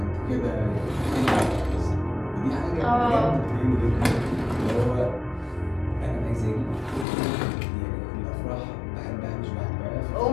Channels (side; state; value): right; drops out; at 7.1 s